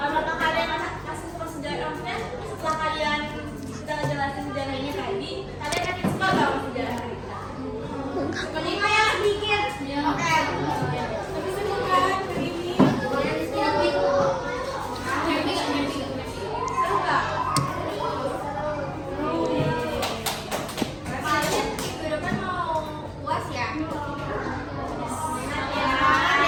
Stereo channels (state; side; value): identical; both; correlation 1.00